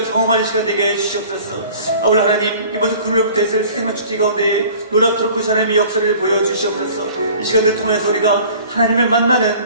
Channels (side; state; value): both; inverted; correlation -0.47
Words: 경험하는 시간 되게 해주시옵소서. 아울러 하나님, 이번 주 금요일부터 있을 생명 축제 가운데 놀랍도록 그 하나님의 역사를 보여주시옵소서. 이 시간을 통해서 우리가 하나님을